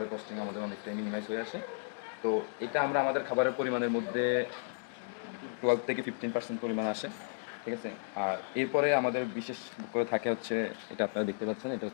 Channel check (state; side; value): silent; right; digital silence